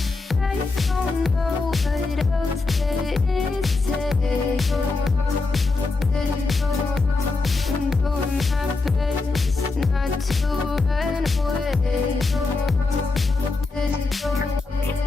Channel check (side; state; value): right; quieter; 3.7 dB